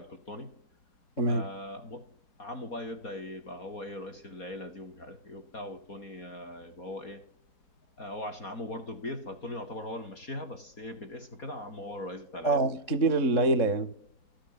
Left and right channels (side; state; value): right; late; 4.2 ms